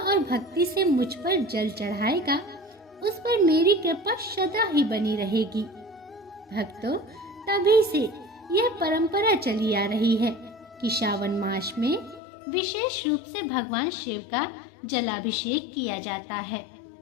और भक्ति से मुझ पर जल चढ़ाएगा, उस पर मेरी कृपा सदा ही बनी रहेगी। भक्तों, तभी से यह परंपरा चली आ रही है कि श्रावण मास में विशेष रूप से भगवान शिव का जलाभिषेक किया जाता है।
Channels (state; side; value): drops out; right; at 12.2 s